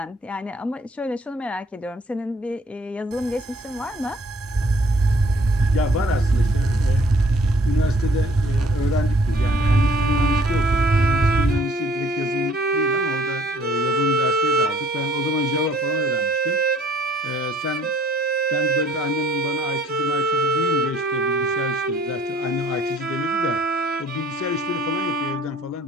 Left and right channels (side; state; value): both; normal; correlation 0.58